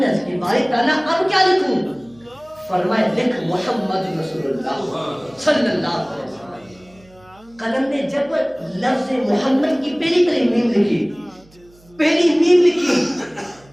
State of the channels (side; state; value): right; noise; hum, 28 dB below the sound